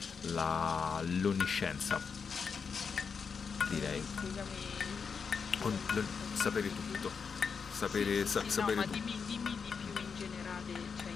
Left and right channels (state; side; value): quieter; right; 5.8 dB